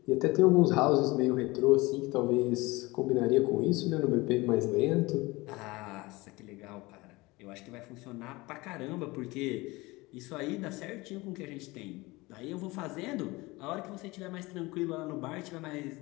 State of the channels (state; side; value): quieter; right; 22.2 dB